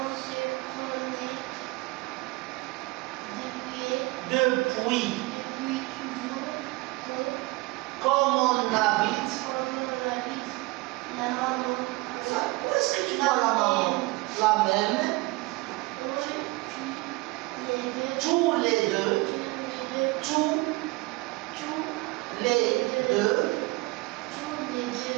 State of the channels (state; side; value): quieter; left; 23.2 dB